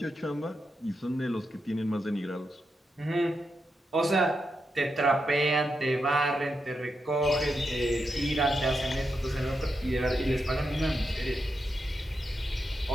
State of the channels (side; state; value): both; normal; correlation 0.85